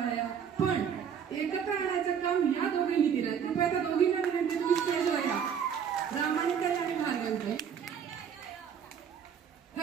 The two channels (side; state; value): left; quieter; 7.7 dB